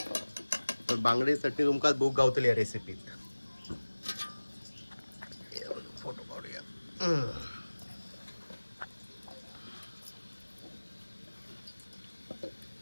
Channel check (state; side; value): inverted; both; correlation -1.00